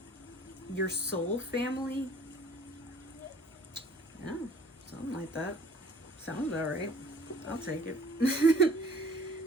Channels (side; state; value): both; normal; correlation 0.52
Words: your soul family. Yeah, something like that. Sounds all right. I'll take it.